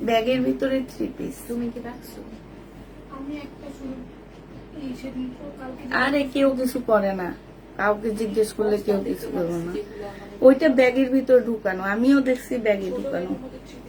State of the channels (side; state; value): both; identical; correlation 1.00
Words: ব্যাগের ভিতরে 3 পিস। তুমি কি রাখছো? আরে কেউ কিছু করে না, কাউকে জিজ্ঞেস করলে কেউ কিছু করবে না। ওইটা ব্যাগের ভিতর ঢুকানো, আমিও দেখছি ব্যাগে ঢুকানো।